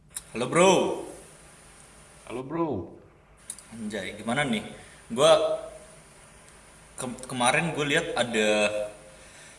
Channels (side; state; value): both; identical; correlation 1.00